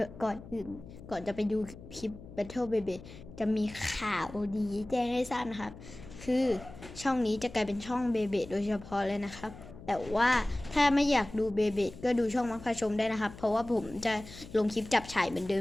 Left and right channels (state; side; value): noise; left; hum, 16 dB below the sound